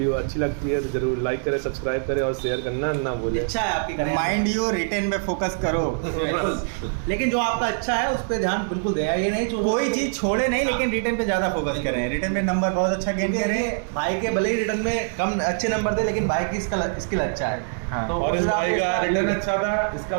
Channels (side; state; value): left; silent; digital silence